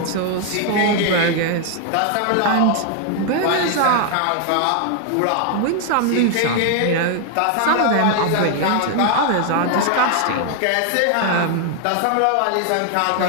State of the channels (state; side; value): different; both; correlation 0.00